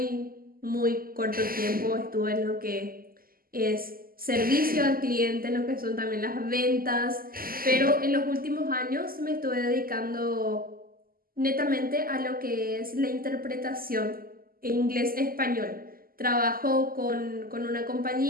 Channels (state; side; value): late; left; 0.42 ms